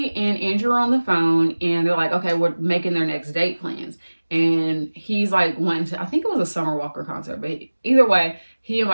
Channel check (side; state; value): both; inverted; correlation -1.00